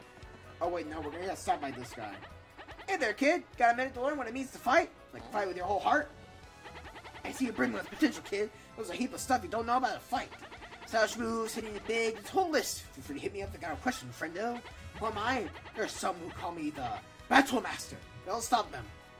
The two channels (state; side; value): identical; both; correlation 1.00